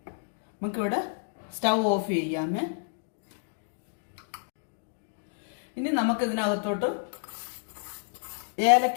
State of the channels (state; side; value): silent; right; digital silence